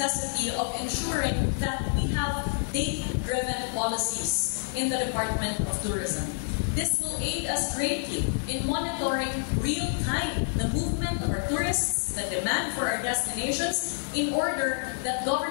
of ensuring that we have data-driven policies in the Department of Tourism. This will aid us greatly in monitoring real-time the movement of our tourists, the demand for our destinations, in order that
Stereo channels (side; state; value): right; silent; digital silence